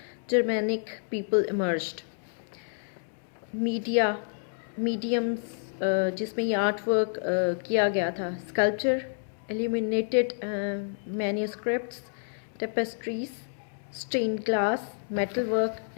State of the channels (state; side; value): silent; right; 59 dB below the other